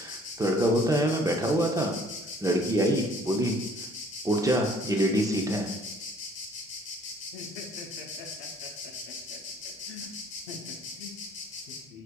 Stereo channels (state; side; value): normal; both; correlation 0.57